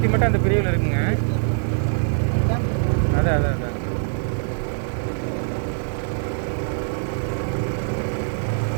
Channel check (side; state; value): left; silent; digital silence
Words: மட்டும் அந்த பிரிவில் இருக்குங்க. அதான்